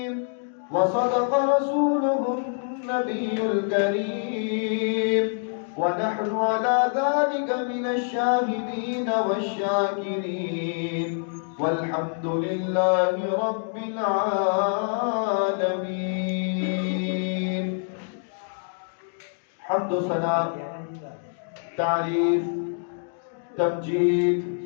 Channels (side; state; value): right; silent; digital silence